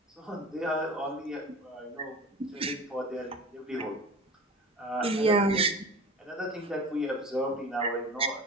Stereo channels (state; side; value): normal; both; correlation 0.34